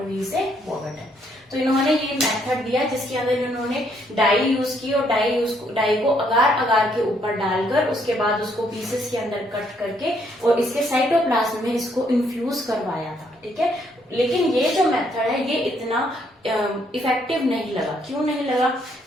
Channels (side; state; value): both; normal; correlation 0.70